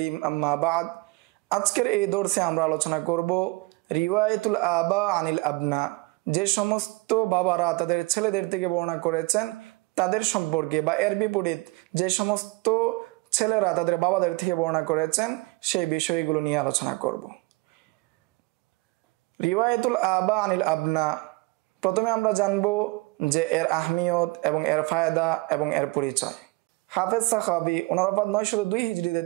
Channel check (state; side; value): quieter; left; 24.5 dB